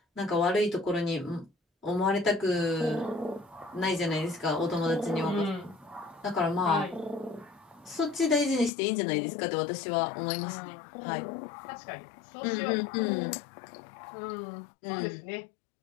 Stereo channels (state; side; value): drops out; right; at 8.7 s